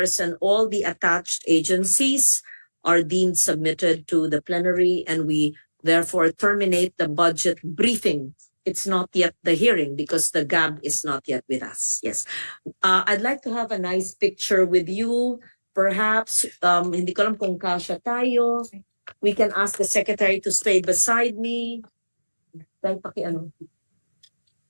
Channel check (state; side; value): inverted; both; correlation -1.00